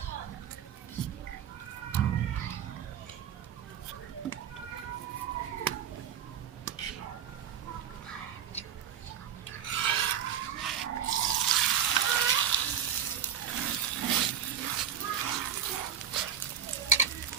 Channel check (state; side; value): quieter; left; 8.8 dB